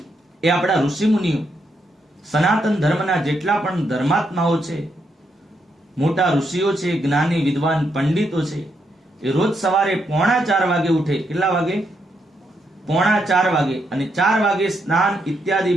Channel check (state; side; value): normal; both; correlation 0.79